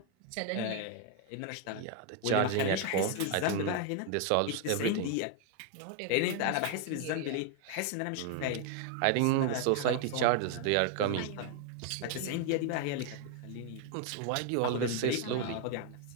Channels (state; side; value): different; both; correlation 0.00